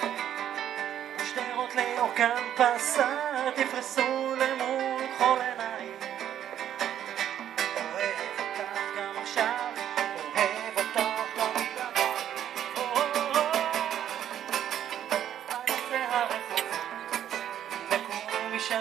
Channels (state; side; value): quieter; left; 10.5 dB